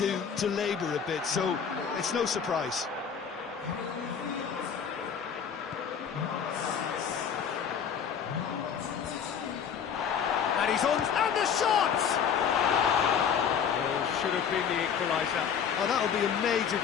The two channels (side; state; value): right; quieter; 7.4 dB